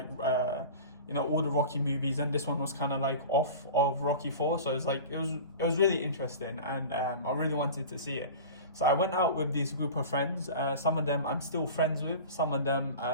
all the Rocky movies, and this one was kind of like off of Rocky 4, so it's like it was really interesting, and I really wanted to see it. So I went out with this group of friends. Some of them I'm still friends with, some of them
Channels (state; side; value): inverted; both; correlation -0.35